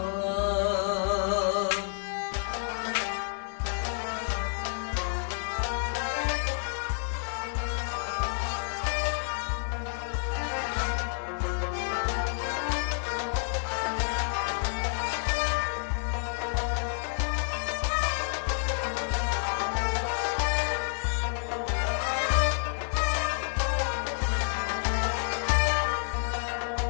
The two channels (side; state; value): right; silent; 58 dB below the other